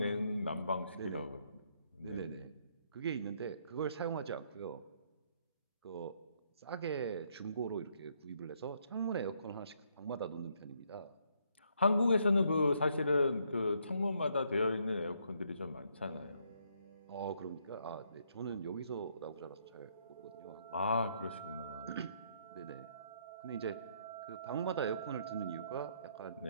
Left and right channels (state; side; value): inverted; both; correlation -0.72